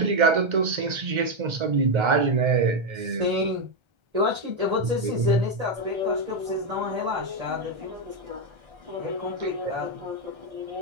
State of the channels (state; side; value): late; left; 1.3 ms